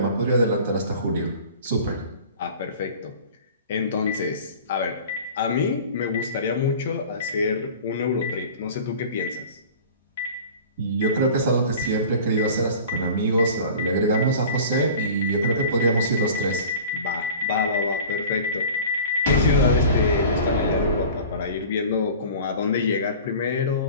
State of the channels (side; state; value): both; inverted; correlation -0.41